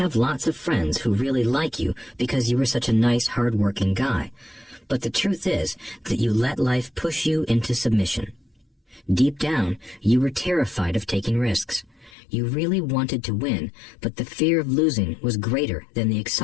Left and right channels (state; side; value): drops out; right; at 12.1 s